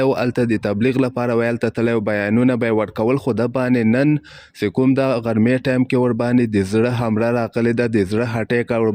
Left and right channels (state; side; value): identical; both; correlation 1.00